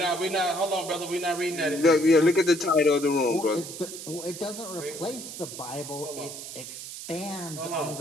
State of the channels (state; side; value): noise; right; hiss, 10 dB below the sound